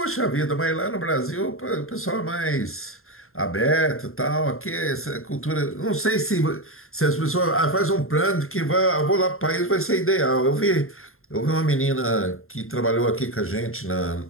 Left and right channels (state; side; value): late; right; 0.61 ms